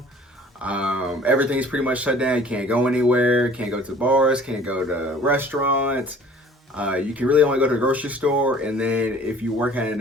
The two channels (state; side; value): normal; both; correlation 0.50